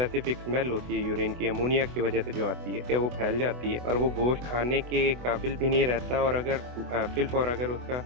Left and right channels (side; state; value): left; late; 24 ms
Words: स्मेल होती है यूरिन की अमोनिया की वजह से जो आती है, क्या वो फैल जाती है और वो गोश्त खाने के काबिल भी नहीं रहता और अगर फिल अगर उसका